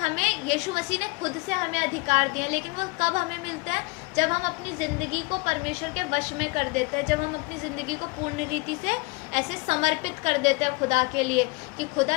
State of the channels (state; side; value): quieter; right; 26.6 dB